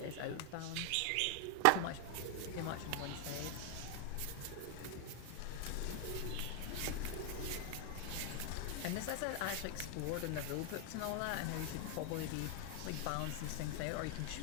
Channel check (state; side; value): different; both; correlation 0.00